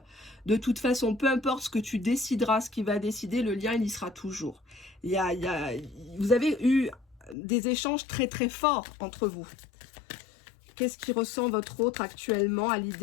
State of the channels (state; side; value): drops out; right; at 7.4 s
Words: De toute façon, peu importe ce que tu décideras, ce qu'il va décider, le lien, il y sera toujours. Vous avez eu des échanges très très forts entre vous. Qu'est-ce qui ressent votre autre actuellement à